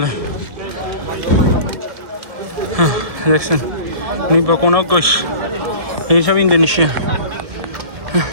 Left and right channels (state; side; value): late; left; 1.7 ms